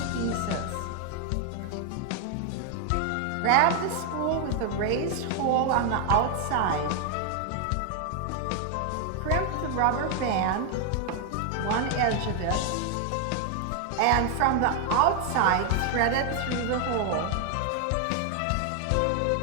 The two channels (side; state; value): both; different; correlation 0.00